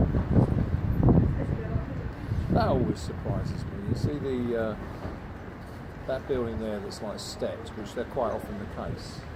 That always surprises me. You see that building there that's like steps, which they're quite often the case.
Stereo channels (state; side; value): identical; both; correlation 1.00